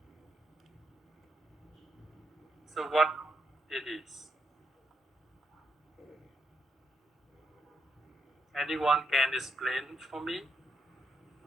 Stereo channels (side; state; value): both; normal; correlation 0.78